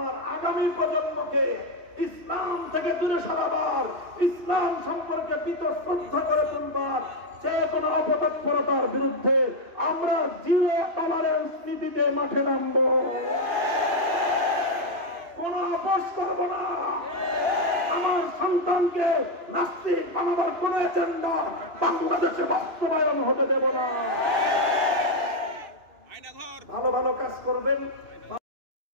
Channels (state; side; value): late; left; 2.9 ms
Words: আগামী প্রজন্মকে ইসলাম থেকে দূরে সরাবার, ইসলাম সম্পর্কে শ্রদ্ধা করে তুলবার, যে কোনো অপতৎপরতার বিরুদ্ধে আমরা জিরো টলারেন্স নীতিতে মাঠে নামবো, কোন আপোষ করব না। আমার সন্তানকে নাস্তিক বানাবার কোন এজেন্ডা বাংলাদেশে বাস্তবায়ন হতে দেব না। ভালো ভালো কাজ করবেন,